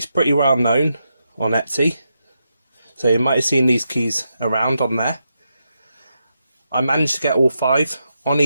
pretty well known on Etsy, so you might have seen these keys around on there. I managed to get all 5 on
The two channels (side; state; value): both; inverted; correlation -0.84